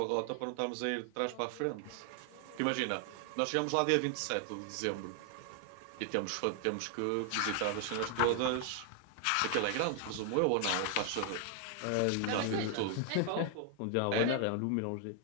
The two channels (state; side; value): different; both; correlation 0.00